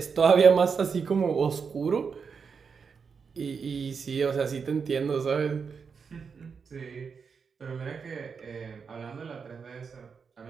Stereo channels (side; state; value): left; quieter; 5.8 dB